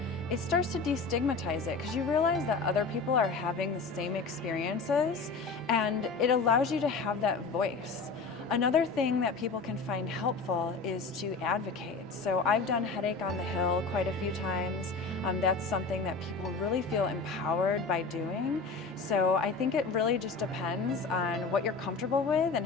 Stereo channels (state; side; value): quieter; right; 4.3 dB